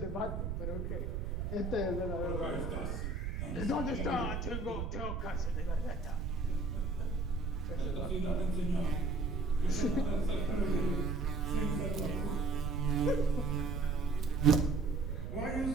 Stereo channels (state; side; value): noise; right; rumble, 2 dB below the sound